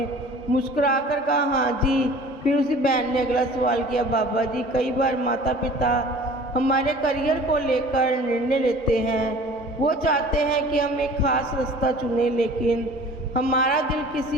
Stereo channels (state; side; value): normal; both; correlation 0.45